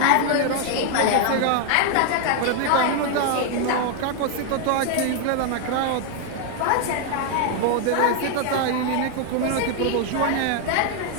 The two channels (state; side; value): different; both; correlation 0.00